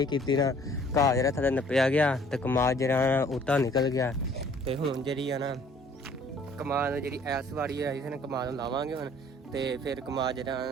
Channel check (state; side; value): normal; both; correlation 0.56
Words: ਕੀਤੀ ਨਾ ਘਾਹ ਜਿਹੜਾ ਥੱਲੇ ਨੱਪਿਆ ਗਿਆ ਤੇ ਕਮਾਦ ਜਿਹੜਾ ਉੱਤਾ ਨਿਕਲ ਗਿਆ। ਤੇ ਹੁਣ ਜਿਹੜੀ ਆ ਨਾ ਕਮਾਦ ਜਿਹੜੀ ਐਸ ਵਾਰੀ ਆਈ ਸੀ ਨਾ ਕਮਾਦ ਨੂੰ ਲਾਵਾਂਗੇ ਹੁਣ ਤੇ ਫਿਰ ਕਮਾਦ